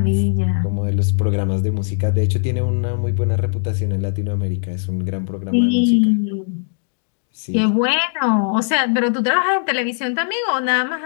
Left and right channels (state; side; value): silent; right; 66 dB below the other